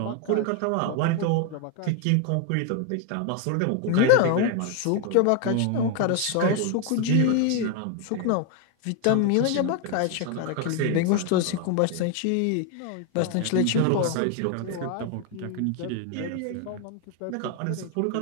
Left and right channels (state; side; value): different; both; correlation 0.01